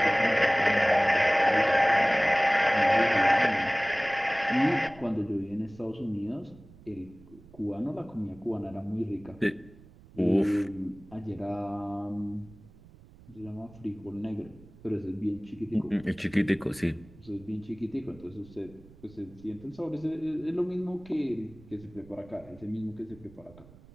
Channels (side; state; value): right; noise; rumble, 23 dB below the sound